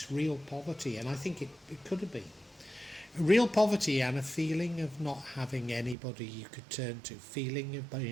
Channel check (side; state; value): left; drops out; at 6.0 s